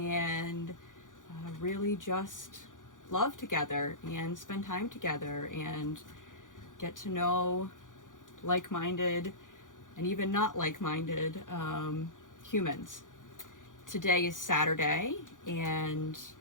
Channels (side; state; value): right; late; 0.88 ms